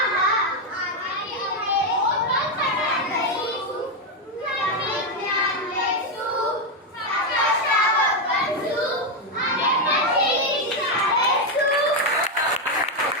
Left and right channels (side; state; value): both; normal; correlation 0.05